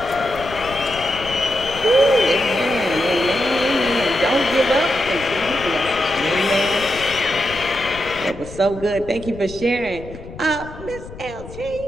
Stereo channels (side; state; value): left; noise; rumble, 15 dB below the sound